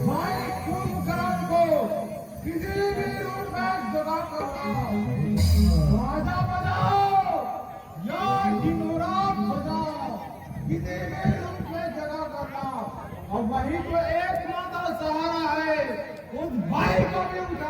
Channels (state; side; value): identical; both; correlation 1.00